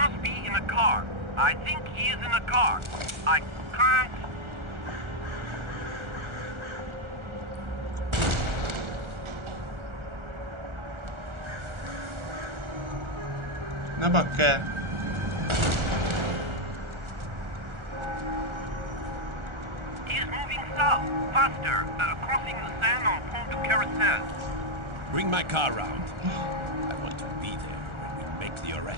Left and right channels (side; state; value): left; late; 1.4 ms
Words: be in a car. I think he is in a car. I can't... Ne bakker! He is moving south, faster, crossing the Seine on Pont du Carousel. Bring my car round. I want to be there when we make the